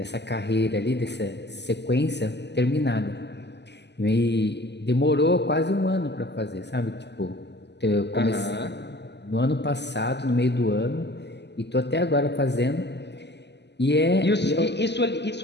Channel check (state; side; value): late; right; 0.50 ms